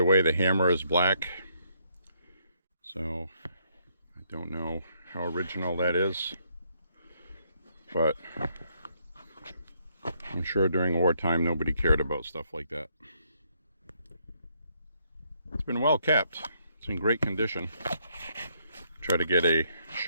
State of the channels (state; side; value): inverted; both; correlation -0.72